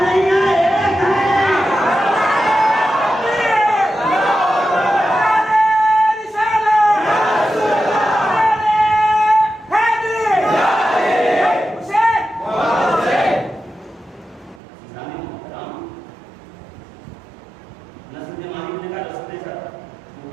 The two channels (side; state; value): left; drops out; at 14.6 s